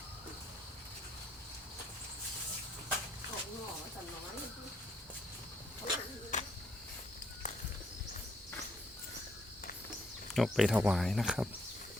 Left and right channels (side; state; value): both; normal; correlation 0.71